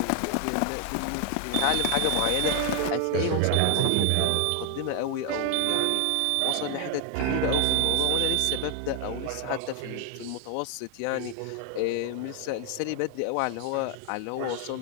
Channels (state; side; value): different; both; correlation 0.01